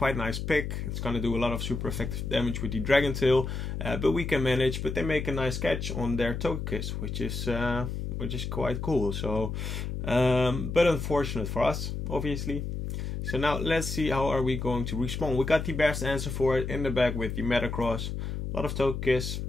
nice pick. It's gonna do a lot of super effective damage with the Dragon Tail, but we can manage. But they make a nice catch on their Togekiss, which is quite cool. So, but unfortunate for us, obviously. So now let's see how are we going to respond. We got the best answer for it in the back with the Metagross. A lot of Togekiss.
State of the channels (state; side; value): noise; left; hum, 4 dB below the sound